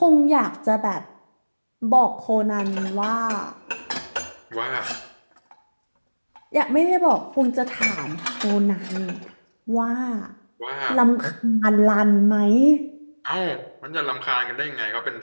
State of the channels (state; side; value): inverted; both; correlation -1.00